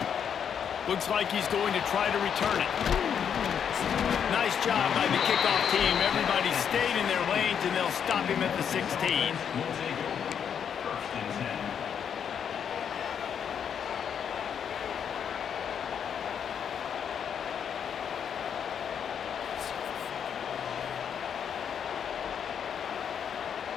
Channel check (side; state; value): right; quieter; 7.9 dB